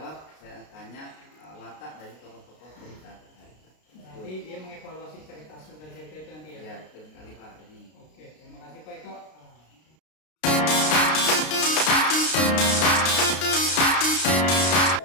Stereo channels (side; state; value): right; late; 33 ms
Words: saya tanya watak dari tokoh-tokoh cerita tadi. Nanti dia mengevaluasi cerita itu nanti ya? Ya, betul sekali Pak. Ini. Oke, terima kasih Pak Eko.